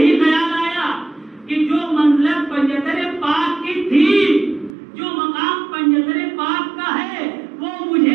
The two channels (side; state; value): left; drops out; at 4.8 s